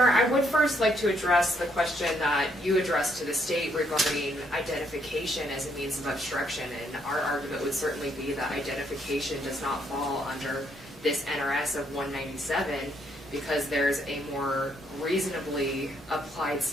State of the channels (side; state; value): both; normal; correlation 0.72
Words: I would first like to address the question that you addressed to the state regarding identification as a means of obstruction, and our argument would certainly be that identification does not fall under this NRS of 197 because there's a more reasonably applied